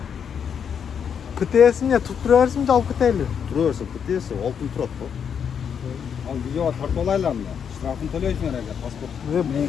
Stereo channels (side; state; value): right; quieter; 7.5 dB